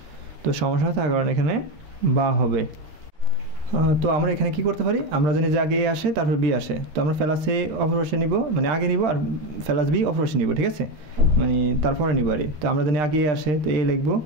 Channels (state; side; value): late; left; 13 ms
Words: তো সমস্যা থাকার কারণে এখানে বা হবে। তো আমরা এখানে কি করতে পারি, আমরা জানি যে আগে এ আসে তারপর বি আসে, তো আমরা ফেলাস এ অপরপাশে নিব, মানে আগে নিব, আর ফেলাস বি অপরপাশে নিব, ঠিক আছে, মানে তারপরে নিব আর। তো আমরা জানি আগে এ আসে তো এ লিখবো,